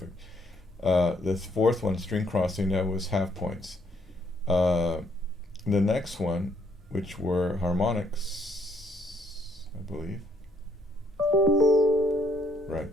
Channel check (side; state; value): both; normal; correlation 0.69